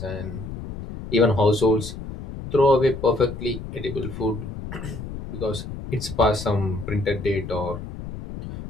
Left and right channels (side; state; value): left; noise; rumble, 9 dB below the sound